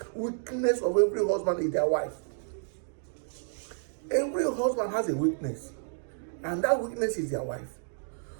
weakness of every husband is their wife. Every husband has a weakness, and that weakness is their wife.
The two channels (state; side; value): silent; left; digital silence